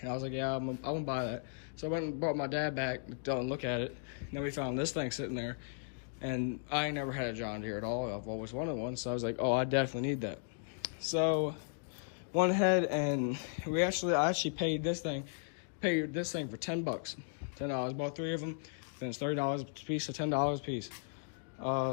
and I was like, yeah, I'm gonna buy that. So I went and brought my dad back to look at it. And then we found this thing sitting there, and I ain't never had a John Deere at all. I've always wanted one, so I was like, oh, I definitely need that. So went ahead and I actually paid this thing for $10. $10. Bought 3 of them, then it's $30 a piece, so $10 a piece.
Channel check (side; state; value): right; silent; digital silence